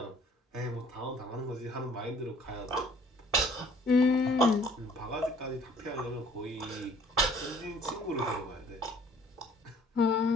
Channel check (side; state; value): both; normal; correlation 0.56